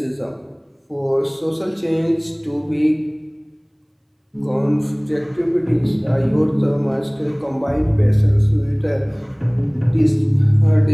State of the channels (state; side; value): identical; both; correlation 1.00